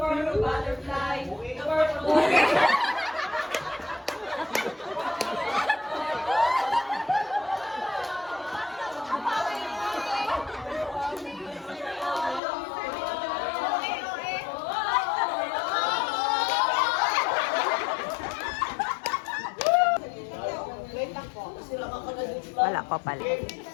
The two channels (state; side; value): drops out; right; at 12.4 s